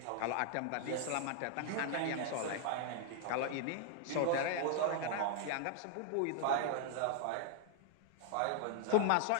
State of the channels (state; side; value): different; both; correlation 0.00